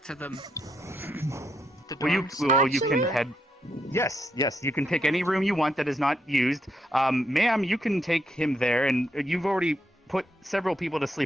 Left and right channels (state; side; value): normal; both; correlation 0.78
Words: to the dorms. You can head. Yes, you can pick any room you want that is not used. Ma'am, you can take him there, and you've already put several people to